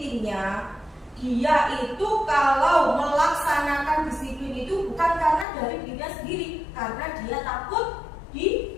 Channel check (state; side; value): drops out; right; at 5.5 s